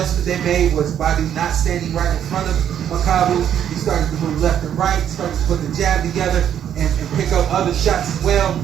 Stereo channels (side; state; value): left; quieter; 9.7 dB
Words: they made was Badu not standing right in front of Makabu. He started to move left and right, started to put the jab together and pick up other shots as well.